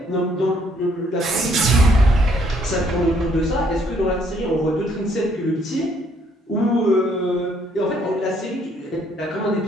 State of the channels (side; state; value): both; normal; correlation 0.67